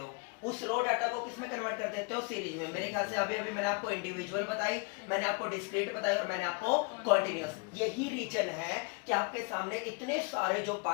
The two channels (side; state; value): right; quieter; 32.1 dB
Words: उस रो डाटा को किस में कन्वर्ट कर देते हो, सीरीज में। मेरे ख्याल से अभी मैंने आपको इंडिविजुअल बताई, मैंने आपको डिस्क्रीट बताई और मैंने आपको कॉन्टिन्यूअस। यही रीजन है कि आपके सामने इतने सारे जो